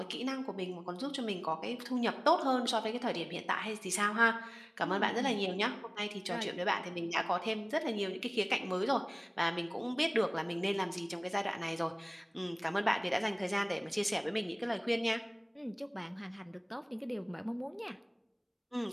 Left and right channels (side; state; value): both; identical; correlation 1.00